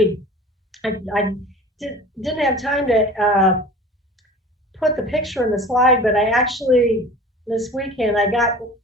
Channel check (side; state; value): both; normal; correlation 0.41